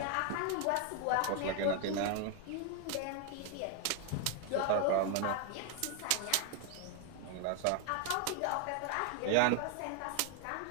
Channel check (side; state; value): both; different; correlation 0.01